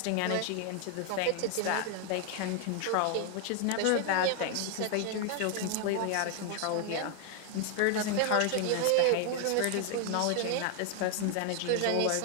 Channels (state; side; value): different; both; correlation 0.00